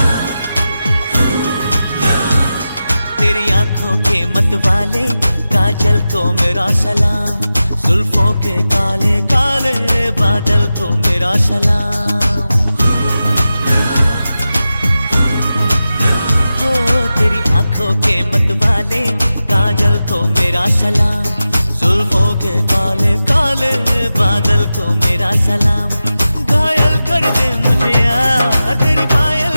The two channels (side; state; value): both; inverted; correlation -0.93